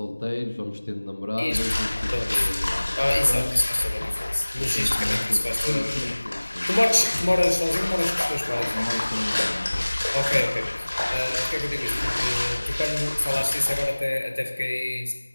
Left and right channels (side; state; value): both; inverted; correlation -1.00